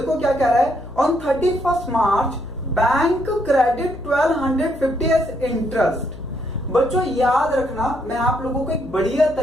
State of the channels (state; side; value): noise; left; hum, 16 dB below the sound